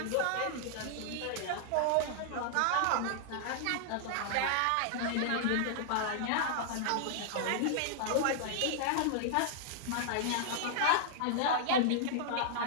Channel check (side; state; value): both; different; correlation -0.01